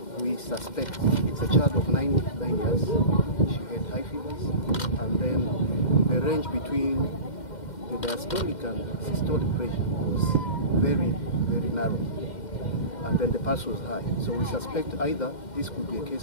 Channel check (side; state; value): right; late; 2.1 ms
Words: we suspect it's a child of 9 years. She had high fevers, and then the range between the diastolic and systolic pressure was very, very narrow, and then the pulse was high. So we suspect either this could be a